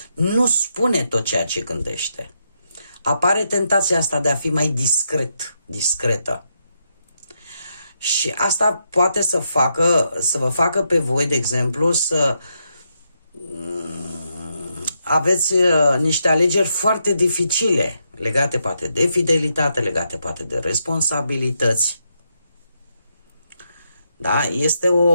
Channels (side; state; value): both; inverted; correlation -0.80